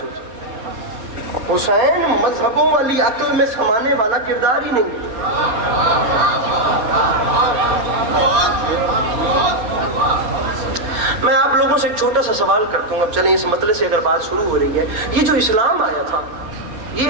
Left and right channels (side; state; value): left; late; 4.3 ms